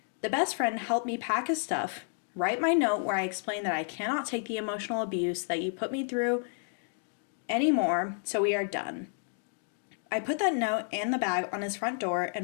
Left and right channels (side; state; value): right; silent; 57 dB below the other